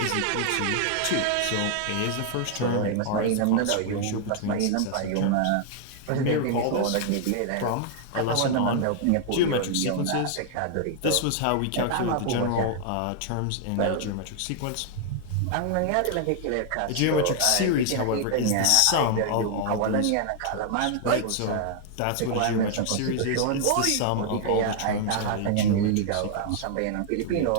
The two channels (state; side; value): different; both; correlation 0.00